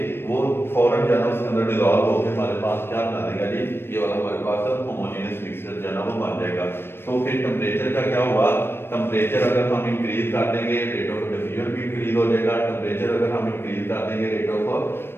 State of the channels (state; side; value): late; right; 0.11 ms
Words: वो फौरन जो है ना उसके अंदर डिसॉल्व होकर हमारे पास क्या बना देगा जी, ये वाला हमारे पास होमोजेनियस मिक्सचर जो है ना वो बन जाएगा। तो फिर टेम्परेचर का क्या हुआ, टेम्परेचर अगर हम इंक्रीज कर देंगे रेट ऑफ डिफ्यूजन भी इंक्रीज हो जाएगा, टेम्परेचर अगर हम इंक्रीज कर देंगे रेट ऑफ